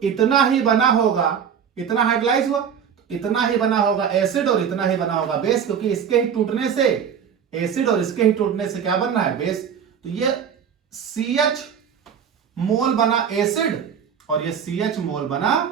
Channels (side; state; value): left; quieter; 7.7 dB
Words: इतना ही बना होगा, इतना हाइड्रोलाइज हुआ तो इतना ही बना होगा एसिड और इतना ही बना होगा बेस, क्योंकि इसके ही टूटने से एसिड और इसके ही टूटने से क्या बनना है, बेस। तो ये CH मोल बना एसिड और ये CH मोल बना